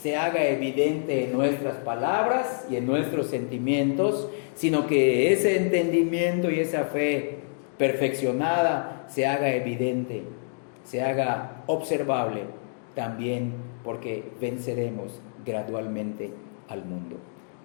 haga evidente en nuestras palabras y en nuestros sentimientos, sino que ese entendimiento y esa fe perfeccionada se haga evidente, se haga observable también, porque venceremos gradualmente al mundo.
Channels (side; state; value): right; silent; digital silence